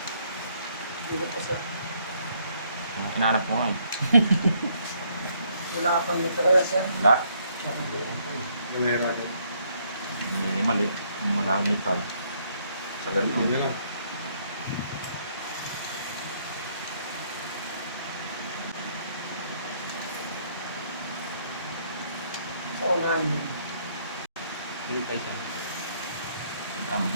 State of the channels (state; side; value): inverted; both; correlation -0.68